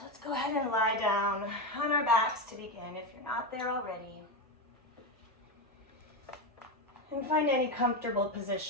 let's go ahead and lie down on our backs to begin if you're not there already. And find any comfortable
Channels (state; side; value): normal; both; correlation 0.13